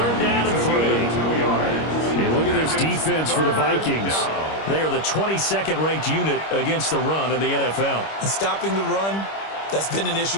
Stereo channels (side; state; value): right; late; 25 ms